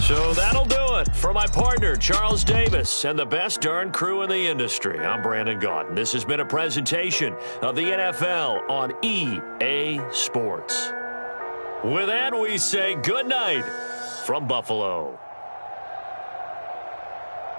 So that'll do it for my partner, Charles Davis, and the best darn crew in the industry. I'm Brandon Gaudin. This has been a presentation of the NFL on EA Sports. With that, we say good night from Buffalo.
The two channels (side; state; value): both; inverted; correlation -1.00